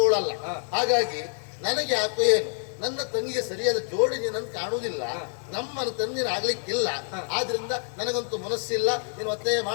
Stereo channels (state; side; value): silent; right; 59 dB below the other